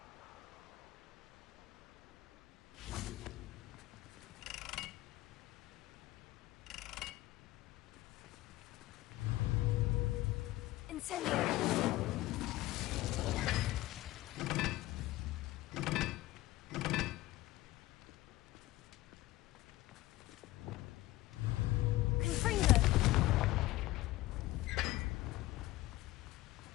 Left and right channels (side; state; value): right; quieter; 17.6 dB